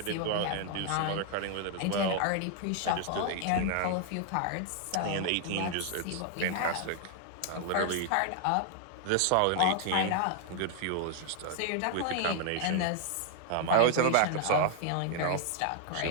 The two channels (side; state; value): both; different; correlation 0.00